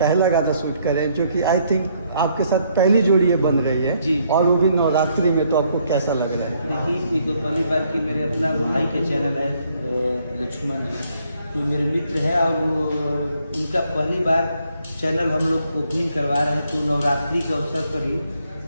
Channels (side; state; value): both; inverted; correlation -0.70